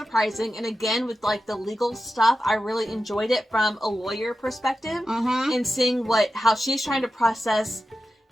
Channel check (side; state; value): both; normal; correlation 0.92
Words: And again, with like the legal stuff, I really enjoyed it from a lawyer perspective Mm-hmm. and seeing how she's trying to process